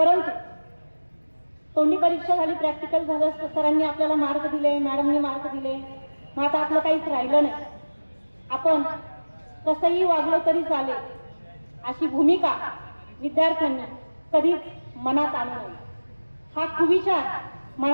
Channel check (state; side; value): inverted; both; correlation -1.00